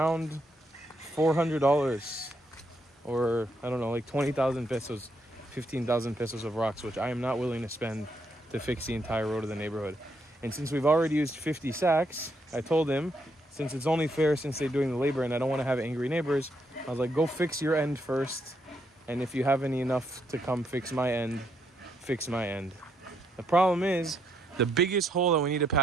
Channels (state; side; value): normal; both; correlation 0.75